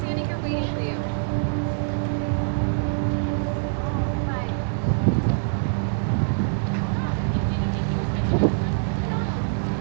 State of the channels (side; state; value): left; silent; digital silence